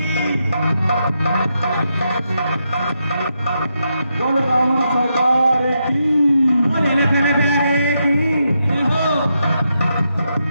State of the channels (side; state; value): both; inverted; correlation -0.83